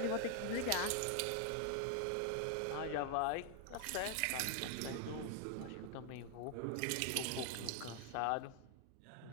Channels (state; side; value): different; both; correlation 0.00